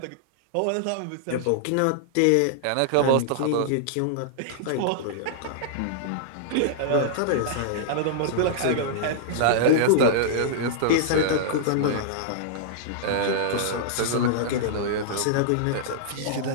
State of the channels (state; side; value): different; both; correlation -0.01